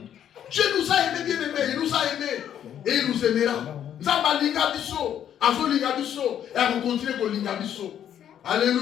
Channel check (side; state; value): right; quieter; 9.9 dB